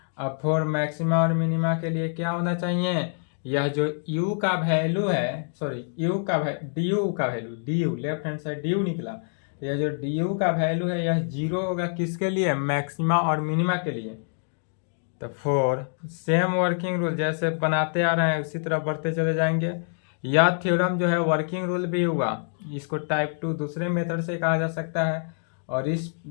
अब फॉर मैक्सिमा और मिनिमा के लिए क्या होना चाहिए, यह जो u का वैल्यू है, सॉरी u का du का value, du left hand side du निकला, तो यह जो du का वैल्यू है यह 0 होगा किसके लिए, मैक्सिमा और मिनिमा के लिए। तो फॉर सेम वर्किंग रूल जैसे बनाते आ रहे हैं उसी तरह बढ़ते चले जाएंगे। यह थ्योरम जो है वर्किंग रूल भी हुआ, इसको टाइप 2 दूसरे मेथड से कहा जा सकता है, और इस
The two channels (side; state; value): right; silent; digital silence